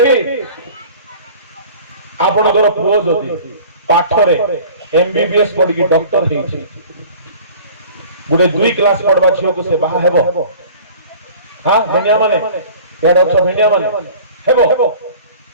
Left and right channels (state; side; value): inverted; both; correlation -0.44